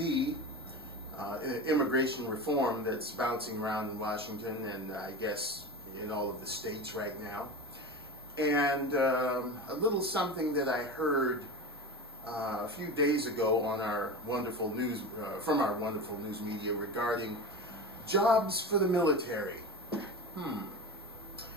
immigration reform that's bouncing around in Washington and I guess in all of the states right now. And a little something that I heard a few days ago on our wonderful news, from our wonderful news media regarding jobs for the military.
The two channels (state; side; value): normal; both; correlation 0.28